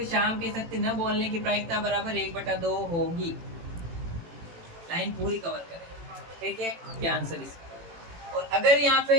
श्याम के सत्य न बोलने की प्रायिकता बराबर 1/2 होगी। लाइन पूरी कवर करें, ठीक है, क्या आंसर इसका। और अगर यहाँ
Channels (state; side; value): late; left; 18 ms